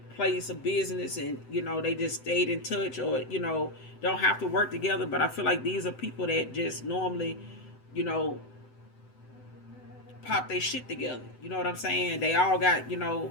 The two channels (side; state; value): right; late; 7.9 ms